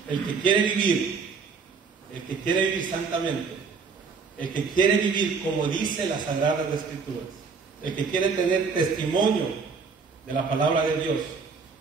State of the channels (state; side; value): quieter; left; 5.1 dB